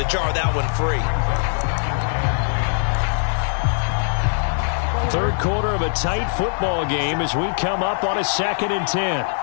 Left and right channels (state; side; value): silent; right; digital silence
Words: jar that one free. 3rd quarter of a tight football game as we come up on a 2nd and 10.